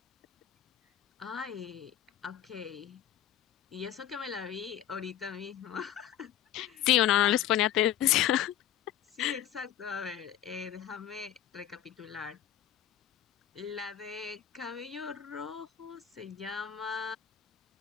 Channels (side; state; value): right; quieter; 11.3 dB